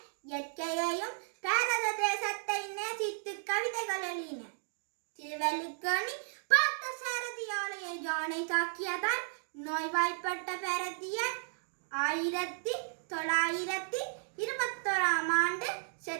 இயற்கையையும் பாரத தேசத்தை நேசித்து கவிதைகள் எழுதினர். திருவள்ளுவனி பார்த்த சாரதி ஆலய யானை தாக்கியதால் நோய்வாய்ப்பட்ட பாரதியார் 1921ஆம் ஆண்டு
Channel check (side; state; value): left; silent; digital silence